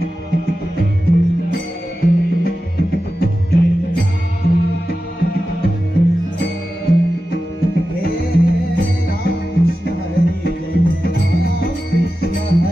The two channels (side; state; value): both; normal; correlation 0.93